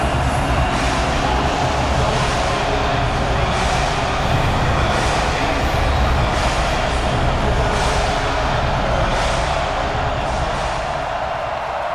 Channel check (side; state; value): both; identical; correlation 1.00